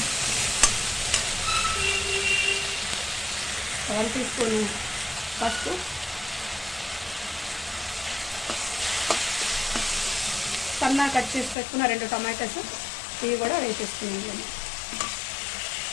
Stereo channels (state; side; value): drops out; right; at 11.6 s